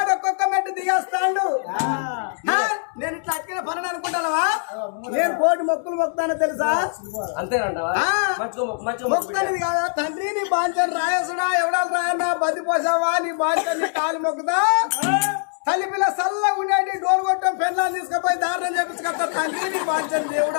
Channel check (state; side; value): silent; right; 61 dB below the other